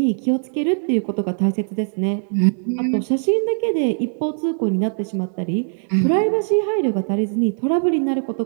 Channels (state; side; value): silent; left; 65 dB below the other